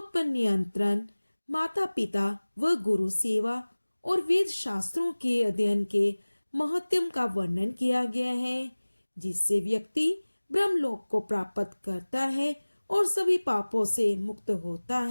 पर नियंत्रण, माता पिता व गुरु सेवा और वेद शास्त्रों के अध्ययन के महत्व का वर्णन किया गया है, जिससे व्यक्ति ब्रह्मलोक को प्राप्त करता है और सभी पापों से मुक्त होता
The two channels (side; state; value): both; inverted; correlation -1.00